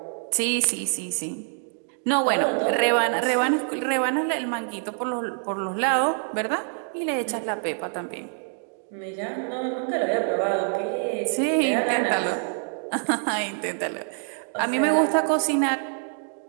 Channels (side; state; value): left; silent; 61 dB below the other